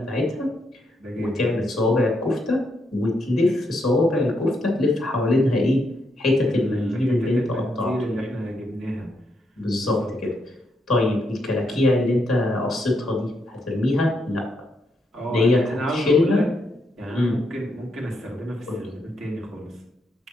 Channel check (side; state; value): both; normal; correlation 0.79